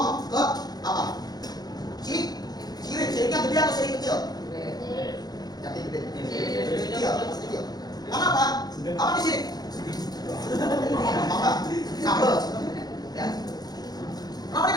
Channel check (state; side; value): late; right; 0.19 ms